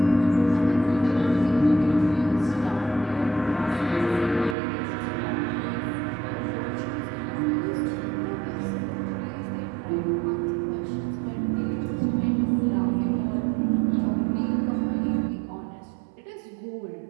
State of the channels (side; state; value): left; drops out; at 4.5 s